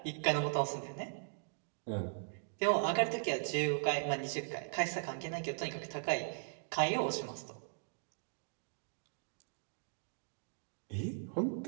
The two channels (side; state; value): left; silent; digital silence